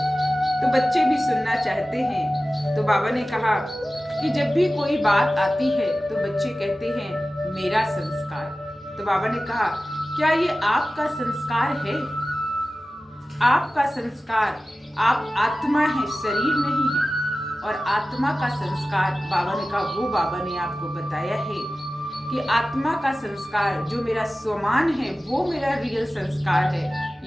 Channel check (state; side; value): normal; both; correlation 0.96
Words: तो बच्चे भी सुनना चाहते हैं। तो बाबा ने कहा कि जब भी कोई बात आती है तो बच्चे कहते हैं मेरा संस्कार। तो बाबा ने कहा क्या ये आपका संस्कार है? आपका संस्कार, आप आत्मा है, शरीर नहीं है। और आत्मा का संस्कार, बाबा ने कहा वो बाबा ने आपको बताया है कि आत्मा का संस्कार जो मेरा स्वमान है वो मेरा रियल संस्कार है।